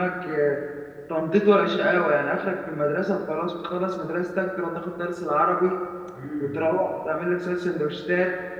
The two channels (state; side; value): identical; both; correlation 1.00